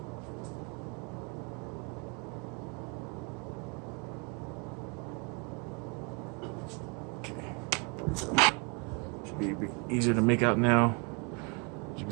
Should be a bit easier to make out now. As you can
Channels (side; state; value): left; quieter; 33.2 dB